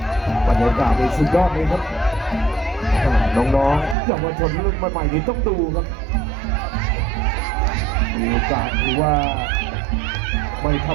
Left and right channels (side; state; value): left; drops out; at 4.0 s